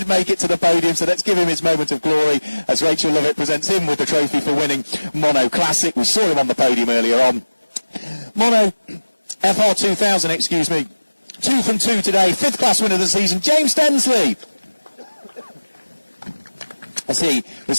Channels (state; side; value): inverted; both; correlation -1.00